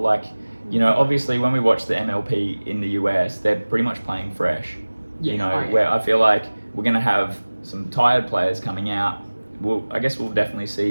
obviously when we watch the MLP in the US, they're pretty much playing fresh. Where I feel like we're going to have some tired players coming out. I guess we'll definitely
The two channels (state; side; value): inverted; both; correlation -1.00